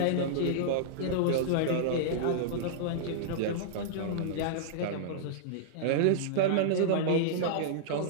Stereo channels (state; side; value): different; both; correlation -0.02